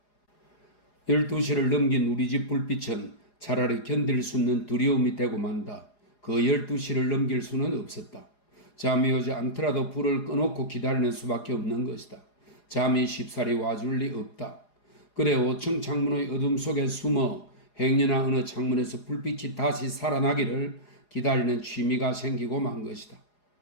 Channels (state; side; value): late; right; 4.8 ms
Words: 12시를 넘긴 우리 집 불빛은 차라리 견딜 수 없는 두려움이 되고 만다. 그 12시를 넘길 수는 없었다. 잠이 오지 않더라도 불을 꺼놓고 기다리는 수밖에 없는 것이다. 잠이 쉽사리 와줄 리 없다. 그래 5층 창문의 어둠 속에 숨어 행여나 어느 창문에서 불빛이 다시 살아나기를 기다리는 취미가 생기고 만 것이다.